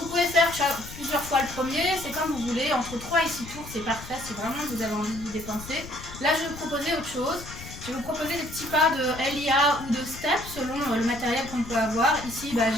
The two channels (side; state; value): left; noise; rumble, 13 dB below the sound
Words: pouvez faire plusieurs fois le premier, c'est comme vous voulez, entre 3 et 6 tours, c'est parfait, si vraiment vous avez envie de vous dépenser. Là je vais vous proposer autre chose, je vais vous proposer des petits pas de LIA ou de step selon le matériel qu'on peut avoir. Ici